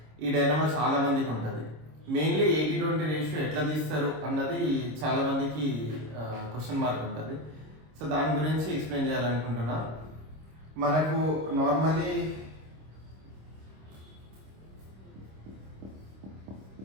ఈ డైనమా చాలా మందికి ఉంటుంది. మెయిన్లీ 80-20 రేషియో ఎట్లా తీస్తారు అన్నది చాలా మందికి క్వశ్చన్ మార్క్ ఉంటుంది. సో దాని గురించి ఎక్స్ప్లెయిన్ చేయాలనుకుంటున్నా. మనకు నార్మలీ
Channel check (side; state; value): left; late; 26 ms